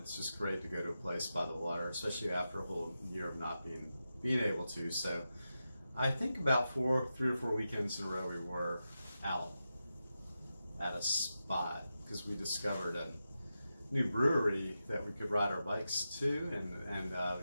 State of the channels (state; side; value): inverted; both; correlation -0.90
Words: just great to go to a place by the water, especially after a whole year of not being able to. So I think about 3 or 4 weekends in a row we were out at a spot because we discovered a new brewery that we could ride our bikes to, and